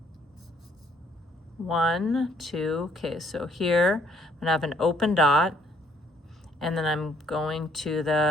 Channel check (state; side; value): normal; both; correlation 0.65